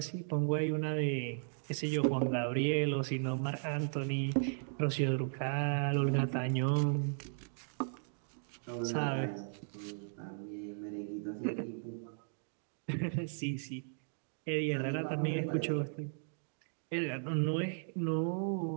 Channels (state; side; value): silent; left; digital silence